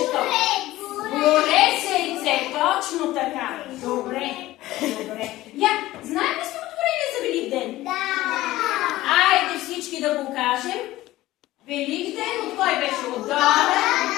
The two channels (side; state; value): right; quieter; 16.6 dB